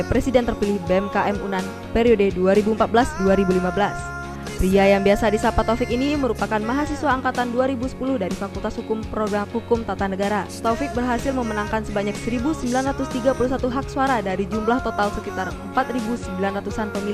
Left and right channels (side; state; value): both; identical; correlation 1.00